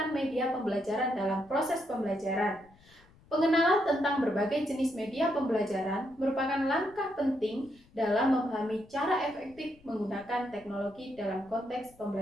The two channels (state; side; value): noise; left; rumble, 28 dB below the sound